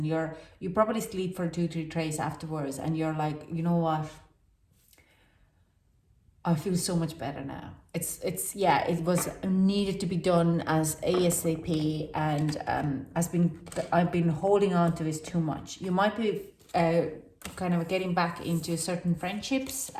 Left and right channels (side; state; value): both; identical; correlation 1.00